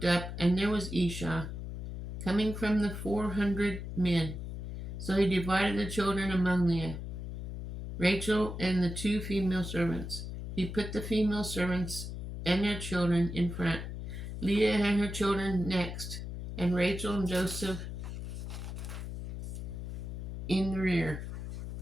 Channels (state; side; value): noise; left; hum, 7 dB below the sound